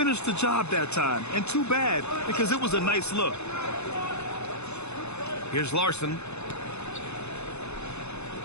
the job that time. And too bad, because it was a nice look. Here's Larson.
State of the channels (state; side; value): late; right; 0.81 ms